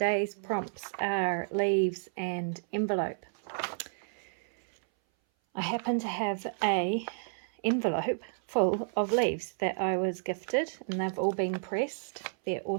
prompts are leaves and envelope. I happen to have a envelope full of leaves that I was gifted and they've all been pressed. They're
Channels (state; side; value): silent; left; 57 dB below the other